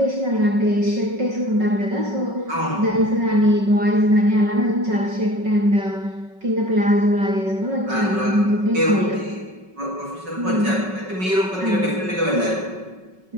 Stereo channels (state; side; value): late; left; 5.3 ms